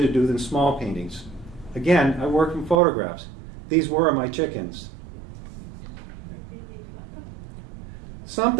do than small paintings. Again, I work from photographs. These were my chickens.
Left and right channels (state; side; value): drops out; left; at 2.8 s